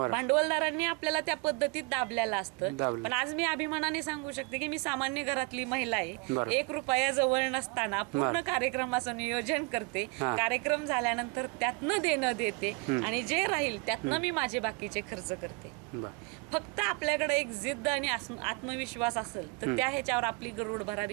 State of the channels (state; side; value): quieter; left; 30.8 dB